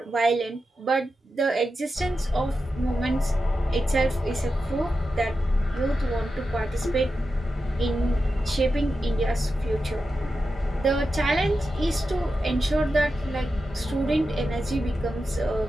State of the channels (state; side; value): normal; both; correlation 0.90